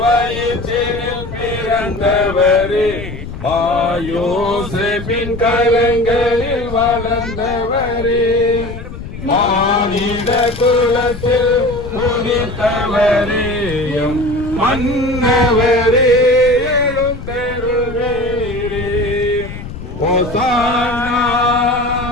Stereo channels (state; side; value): noise; left; rumble, 11 dB below the sound